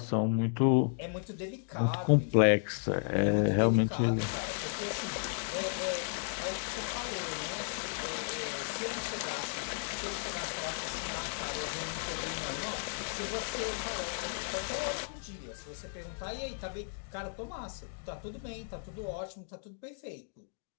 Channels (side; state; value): right; silent; digital silence